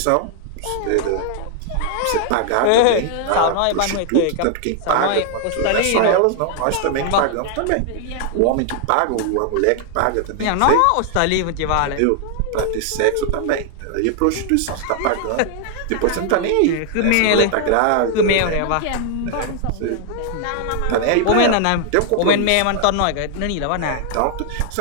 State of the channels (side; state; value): both; different; correlation 0.00